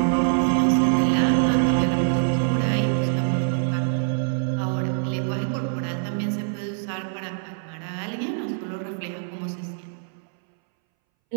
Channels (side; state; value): left; silent; 62 dB below the other